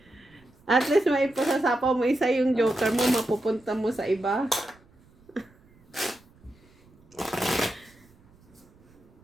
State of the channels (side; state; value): right; noise; rumble, 29 dB below the sound